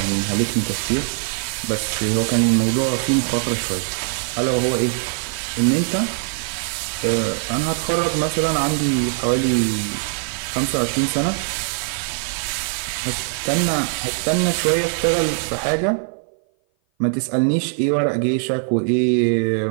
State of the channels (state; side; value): silent; left; 56 dB below the other